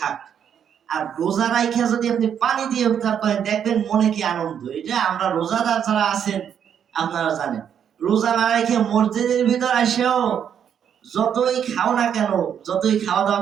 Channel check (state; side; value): quieter; left; 8.5 dB